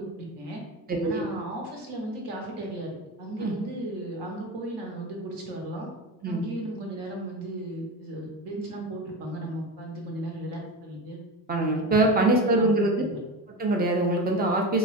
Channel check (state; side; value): normal; both; correlation 0.24